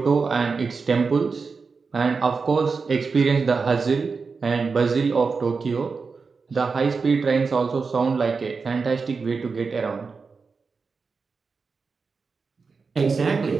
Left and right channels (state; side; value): quieter; left; 4.8 dB